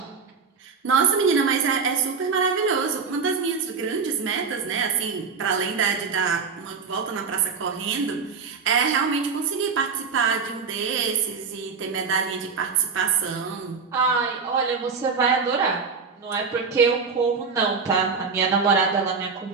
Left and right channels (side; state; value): left; quieter; 5.3 dB